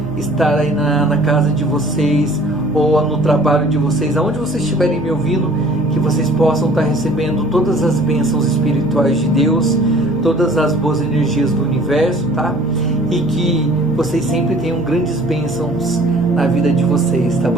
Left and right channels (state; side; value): noise; right; hum, 18 dB below the sound